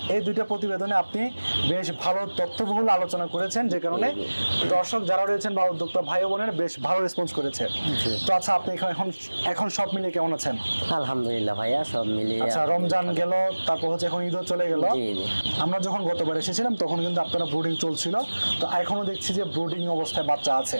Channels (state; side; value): inverted; both; correlation -1.00